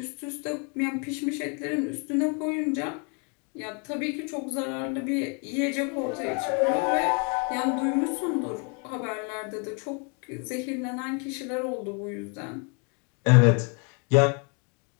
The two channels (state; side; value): quieter; right; 34.1 dB